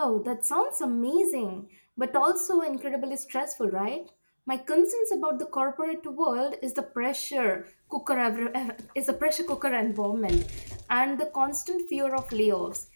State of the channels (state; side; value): inverted; both; correlation -1.00